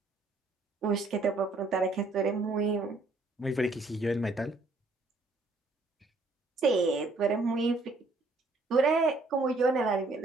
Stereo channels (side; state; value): left; quieter; 3.2 dB